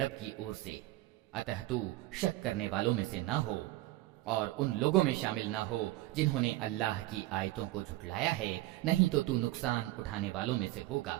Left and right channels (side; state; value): left; quieter; 17.8 dB